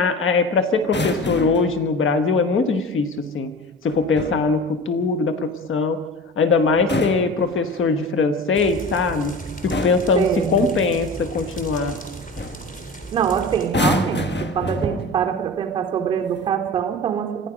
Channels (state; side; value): normal; both; correlation 0.34